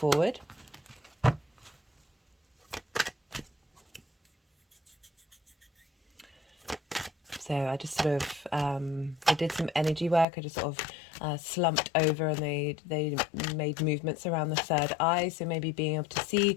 So I just sort of, I did some energy work. I just sort of slumped over, and they made movements around the third eye. So maybe being able to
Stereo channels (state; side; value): drops out; right; at 10.2 s